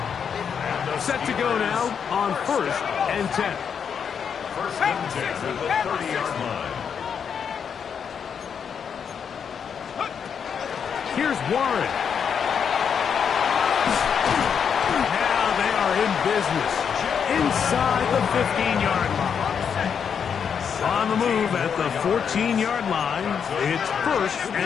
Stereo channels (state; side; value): quieter; right; 7.2 dB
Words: Set to go now on 1st and 10. 1st and 10 at the 30-yard line. Here's Warren. Now they are in business inside the 15-yard line. On On the move at the 14-yard line. It's 1st